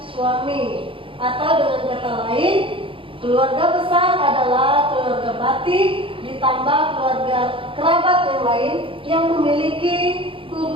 suami. Atau dengan kata lain, keluarga besar adalah keluarga batin ditambah keluarga kerabat yang lain yang memiliki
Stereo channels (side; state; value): left; late; 0.25 ms